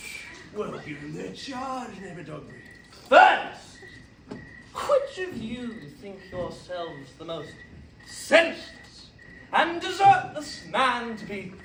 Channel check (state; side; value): identical; both; correlation 1.00